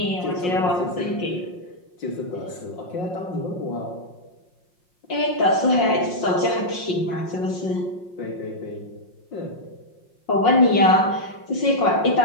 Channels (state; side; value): late; right; 5.6 ms